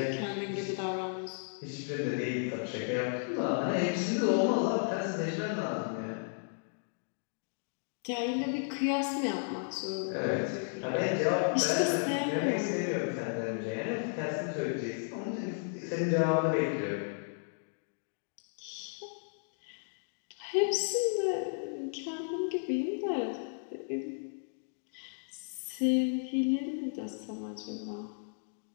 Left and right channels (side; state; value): right; silent; digital silence